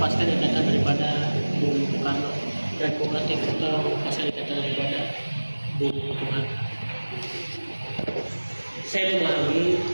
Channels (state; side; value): inverted; both; correlation -1.00